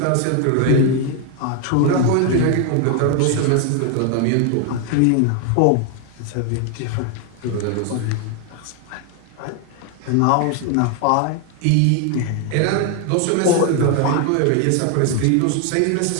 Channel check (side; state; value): both; different; correlation 0.01